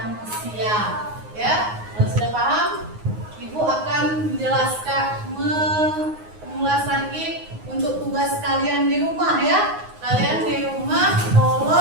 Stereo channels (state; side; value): late; left; 9.5 ms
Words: Ya, kalau sudah paham, Ibu akan menjelaskan, mengulas lagi untuk tugas kalian di rumah ya. Kalian di rumah